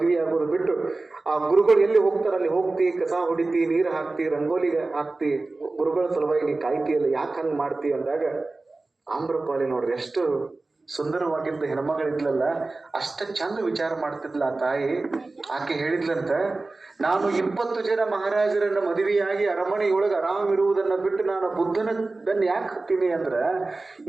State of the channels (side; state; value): left; quieter; 3.3 dB